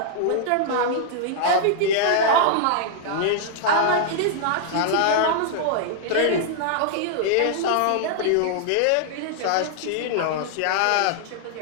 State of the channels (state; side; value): different; both; correlation -0.01